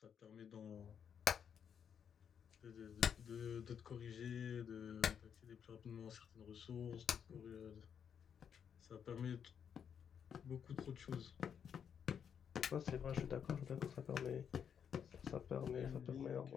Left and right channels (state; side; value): quieter; right; 7.8 dB